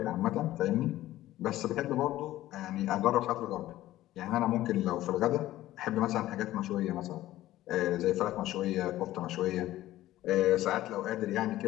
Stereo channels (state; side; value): quieter; right; 15.0 dB